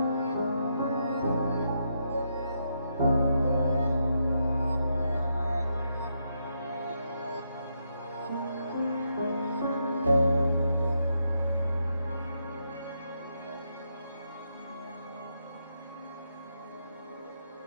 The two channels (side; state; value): both; inverted; correlation -0.80